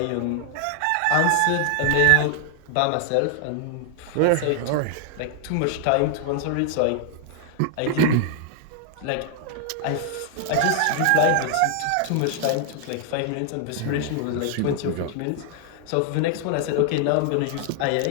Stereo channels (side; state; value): both; different; correlation 0.00